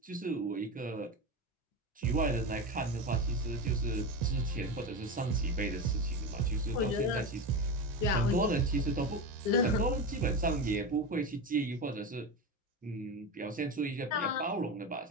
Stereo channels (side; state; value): both; normal; correlation 0.21